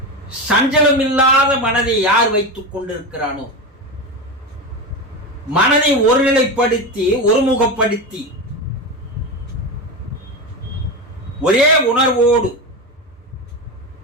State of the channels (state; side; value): normal; both; correlation 0.19